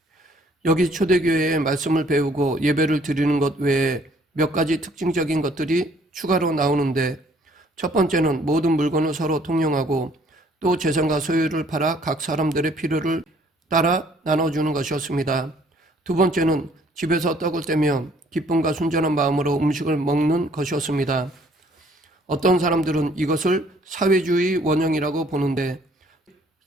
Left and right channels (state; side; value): normal; both; correlation 0.60